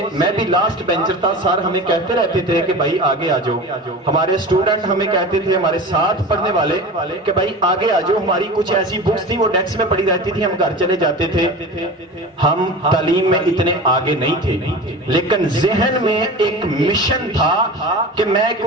میں بھی لاسٹ بینچر تھا، سر ہمیں کہتے رہتے تھے کہ بھائی آگے آ جاؤ. ہمارے اسٹوڈنٹ ہمیں کہتے تھے، ہمارے ساتھ پڑھنے والے کہ بھائی آگے آ جاؤ. ہماری کچھ ایسی بکس تھی وہ ڈیسک میں پڑی رہتی تھی، ہم گھر چلے جاتے تھے. ہم تعلیم میں اتنے آگے نہیں تھے لیکن ذہن میں ایک مشن تھا کہ میں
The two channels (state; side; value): normal; both; correlation 0.32